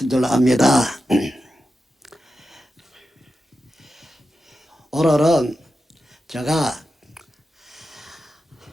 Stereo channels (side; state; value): both; normal; correlation 0.90